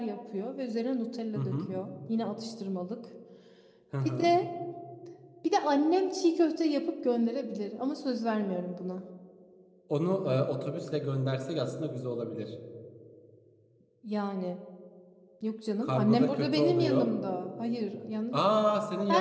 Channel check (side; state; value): both; identical; correlation 1.00